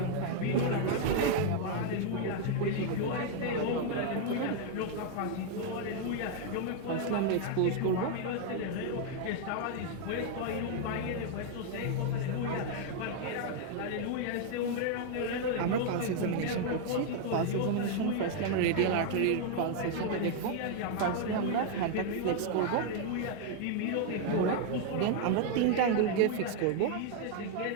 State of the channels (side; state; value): both; different; correlation 0.00